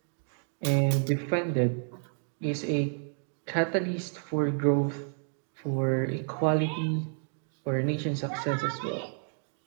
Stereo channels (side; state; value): left; silent; 58 dB below the other